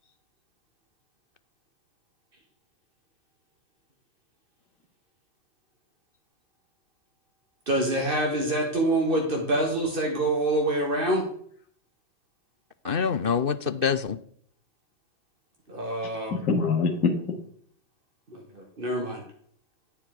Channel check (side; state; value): left; late; 2.6 ms